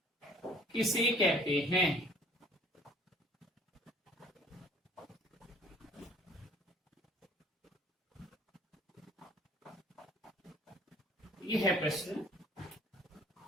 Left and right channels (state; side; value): normal; both; correlation 0.54